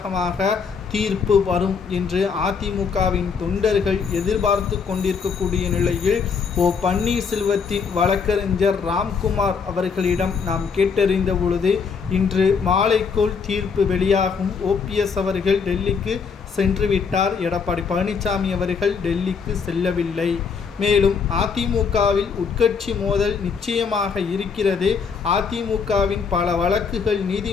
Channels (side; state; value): right; quieter; 5.8 dB